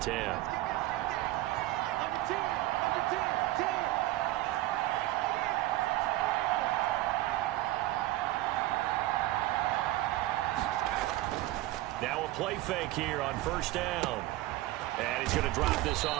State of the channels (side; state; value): left; quieter; 16.8 dB